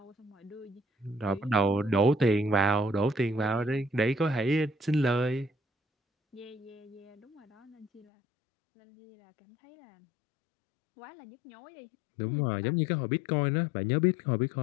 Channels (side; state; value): right; drops out; at 8.1 s